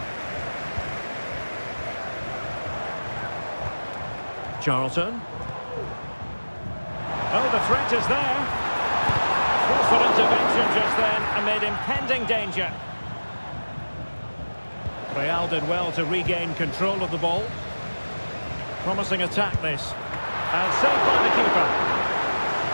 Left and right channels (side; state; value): both; inverted; correlation -1.00